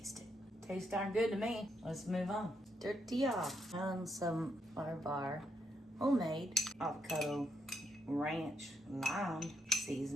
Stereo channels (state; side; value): normal; both; correlation 0.78